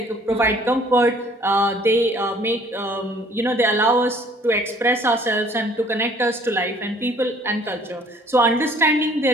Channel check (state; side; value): normal; both; correlation 0.56